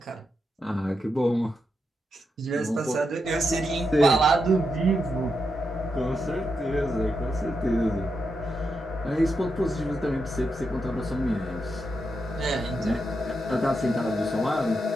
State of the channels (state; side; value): normal; both; correlation 0.85